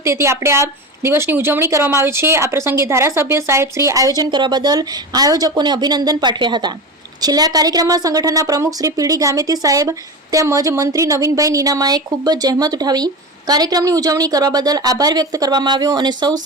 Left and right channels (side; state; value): both; normal; correlation 0.24